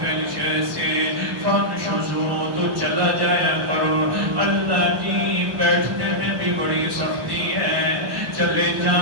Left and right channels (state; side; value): late; left; 1.1 ms